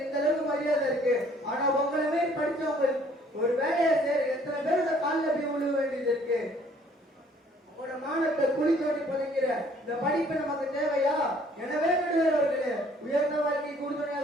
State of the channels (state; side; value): normal; both; correlation 0.59